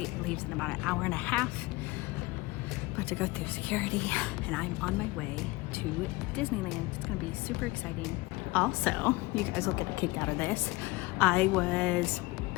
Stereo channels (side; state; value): right; quieter; 22.2 dB